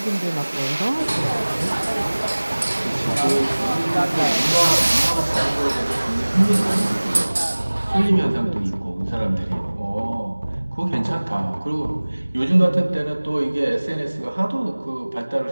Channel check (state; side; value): inverted; both; correlation -1.00